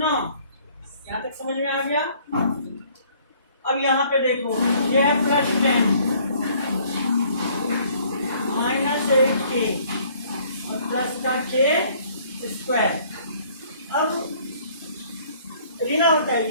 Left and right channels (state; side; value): inverted; both; correlation -0.59